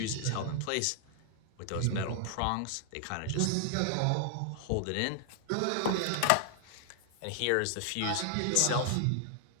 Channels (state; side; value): different; both; correlation 0.00